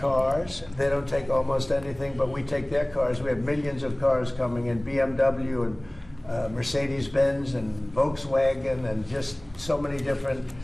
They don't take almost anything, but we take their cars. We have millions of cars coming in, BMW and Mercedes-Benz and Volkswagen and just so many different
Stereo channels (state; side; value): noise; right; hum, 23 dB below the sound